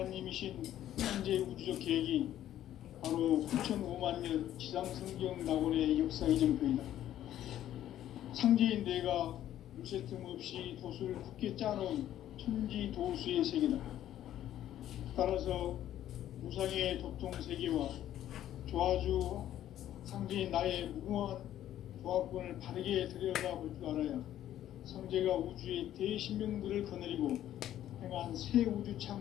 현재 우주적 계획이 바로 9,500,000년 지상성경 낙원의 역사 이정표이다. 상제인 내가 물새 틈 없이 도수를 굳게 짜놓은 천지도수의 세계다. 따라서 우상의 도통 세계와 조화주 상제인 나의 무궁한 조화권을 바르게 들여다볼 줄 알아야 성제가 우주의 대신명들을 거느리고 행한 새 우주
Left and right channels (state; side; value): quieter; right; 12.1 dB